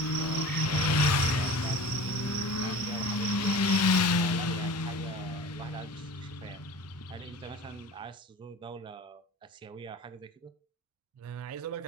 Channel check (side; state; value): both; normal; correlation 0.38